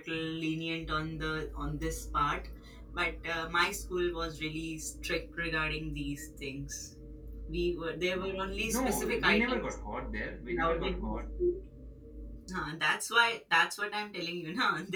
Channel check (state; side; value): identical; both; correlation 1.00